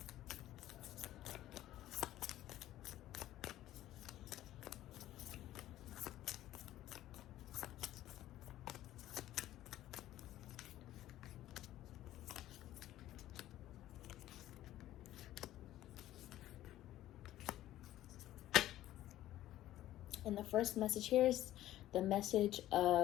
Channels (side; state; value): right; quieter; 14.0 dB